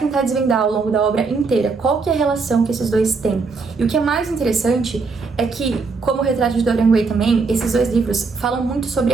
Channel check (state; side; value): quieter; left; 4.4 dB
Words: desvendar ao longo da obra inteira. Qual que é a relação que esses dois têm? E o que é mais interessante é que, como o Retrato de Dorian Gray também, esses dois livros falam muito sobre